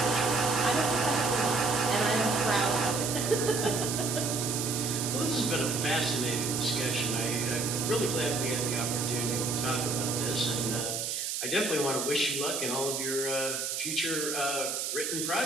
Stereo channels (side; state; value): right; noise; hiss, 2 dB below the sound